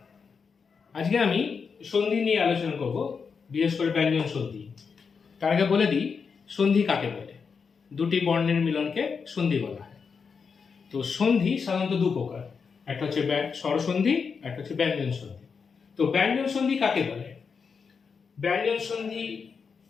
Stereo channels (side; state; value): right; quieter; 5.7 dB